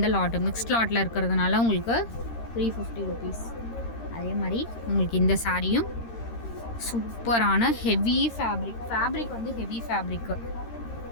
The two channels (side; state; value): right; late; 13 ms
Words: லாட்டு மிக்ஸ்ட் லாட்டில் இருக்கிறதுனால உங்களுக்கு 350 ருபீஸ். அதே மாதிரி உங்களுக்கு இந்த சாரியும் சூப்பரான ஹெவி ஃபேப்ரிக் வந்து ஹெவி ஃபேப்ரிக்கு